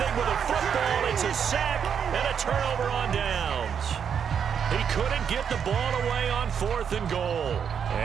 Sack and a turnover on downs. He couldn't get the ball away on 4th and goal.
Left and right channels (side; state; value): left; quieter; 7.5 dB